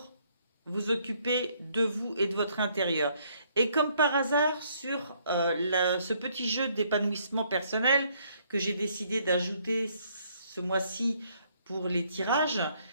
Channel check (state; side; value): inverted; both; correlation -0.68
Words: vous occuper de vous et de votre intérieur. Et comme par hasard, sur ce petit jeu d'épanouissement personnel que j'ai décidé d'ajouter ce mois-ci pour les tirages,